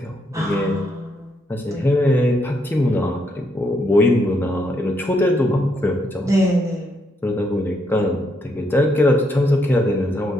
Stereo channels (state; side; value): normal; both; correlation 0.76